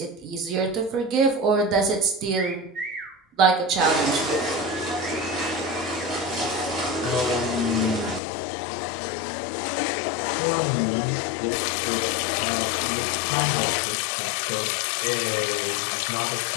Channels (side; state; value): right; drops out; at 8.2 s